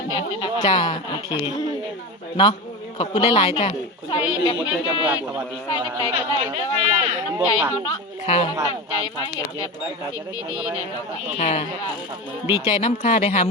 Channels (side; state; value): both; normal; correlation 0.24